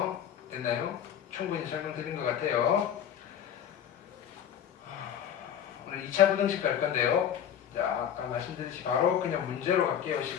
됐나요? 충분히 설명드린 것 같아요. 오늘 2차 부등식 갈 건데요. 자, 아까 말씀드렸듯이 바로 그냥 문제로 갈게요.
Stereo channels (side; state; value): right; quieter; 9.4 dB